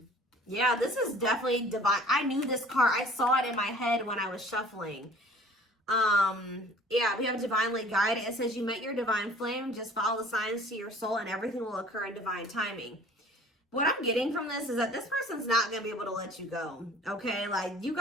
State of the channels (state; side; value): normal; both; correlation 0.50